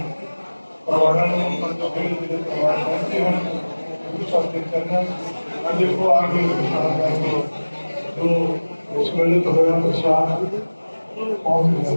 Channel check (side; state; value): both; inverted; correlation -1.00